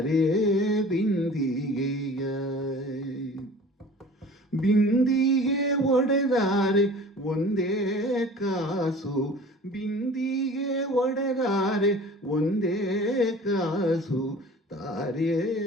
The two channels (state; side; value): normal; both; correlation 0.44